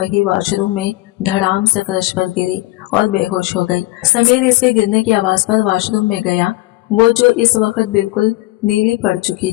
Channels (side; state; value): right; quieter; 19.0 dB